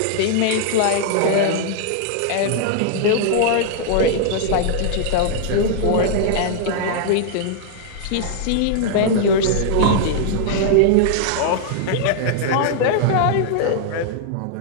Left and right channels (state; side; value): different; both; correlation -0.01